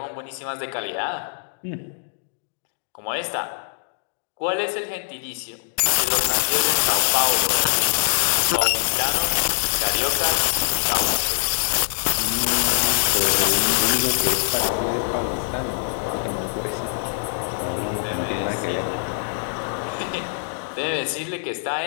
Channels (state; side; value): silent; right; digital silence